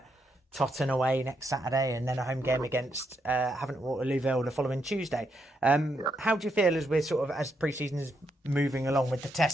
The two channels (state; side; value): normal; both; correlation 0.79